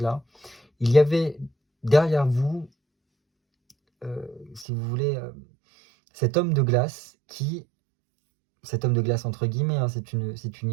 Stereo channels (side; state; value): left; drops out; at 4.7 s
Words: il y avait derrière vous, si vous voulez, cet homme de glace entre guillemets, hein, c'est une